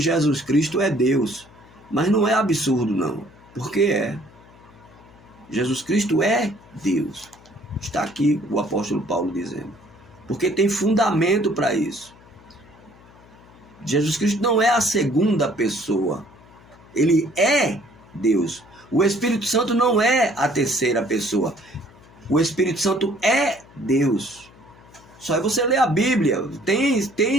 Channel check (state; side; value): noise; left; hum, 25 dB below the sound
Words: Cristo é Deus, mas não é absurdo não, porque é. Jesus Cristo é Deus. Está aqui o apóstolo Paulo dizendo, porque tem fundamento para isso. Jesus Cristo não é a segunda pessoa, ele é Deus. O Espírito Santo não é a terceira pessoa, o Espírito Santo é Deus. Só é você ler a Bíblia,